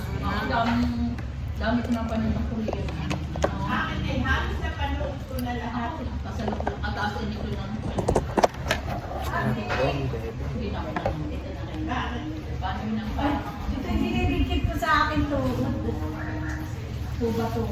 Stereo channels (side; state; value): both; identical; correlation 1.00